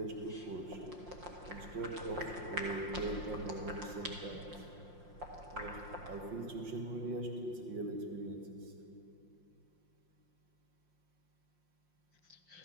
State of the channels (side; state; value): left; late; 5.6 ms